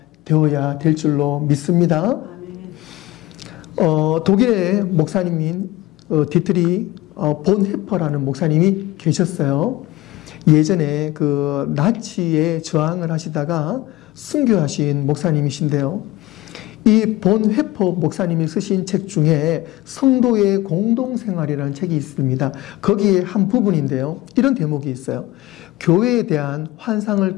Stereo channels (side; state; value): right; quieter; 17.5 dB